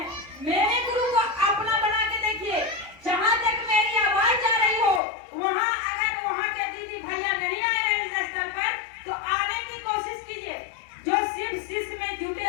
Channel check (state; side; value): drops out; right; at 5.0 s